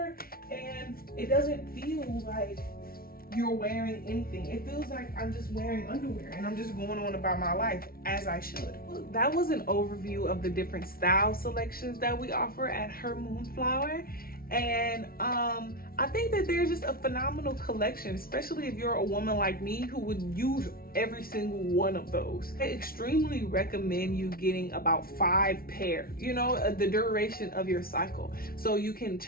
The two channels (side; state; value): right; late; 0.43 ms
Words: and it doesn't feel like you're wearing anything. It feels like I'm just wearing underwear and I'm just going on about my life as I should. That was an overview of the different style selections that we offer at Her Moonflower. And I think that there's just a phenomenal collection, especially if you're a woman like me who would use every single one of those. I extremely recommend you getting about 5 pair, you know, the duration of your cycle, so you can